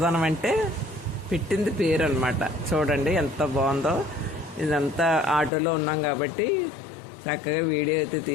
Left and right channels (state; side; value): drops out; right; at 5.5 s